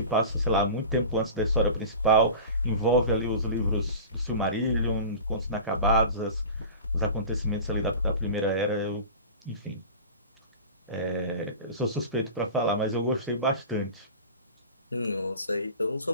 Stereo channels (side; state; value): both; inverted; correlation -0.35